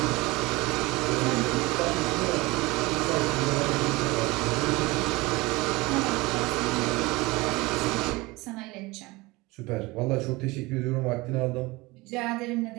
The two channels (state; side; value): quieter; left; 22.5 dB